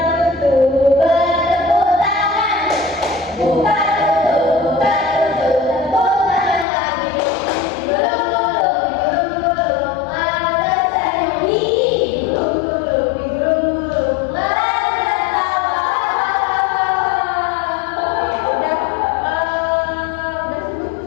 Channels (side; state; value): right; drops out; at 6.7 s